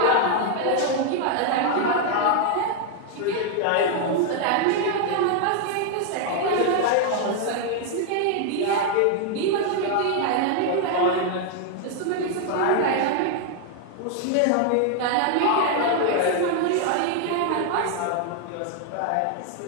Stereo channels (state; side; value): different; both; correlation 0.00